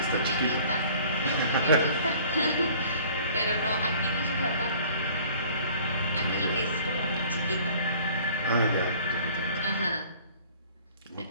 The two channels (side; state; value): both; inverted; correlation -0.51